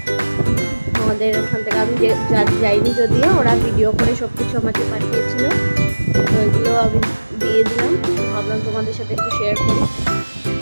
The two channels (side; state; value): both; inverted; correlation -1.00